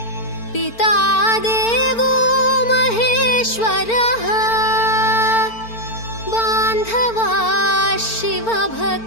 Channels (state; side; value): late; right; 4.4 ms